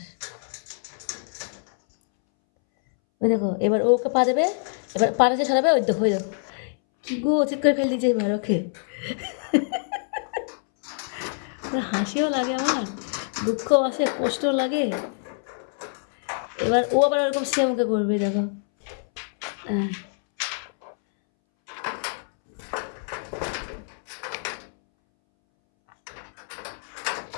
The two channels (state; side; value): silent; right; 61 dB below the other